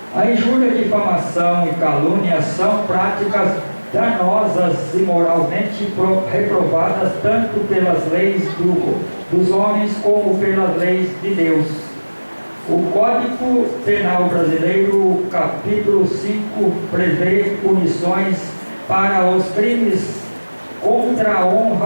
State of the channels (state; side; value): inverted; both; correlation -1.00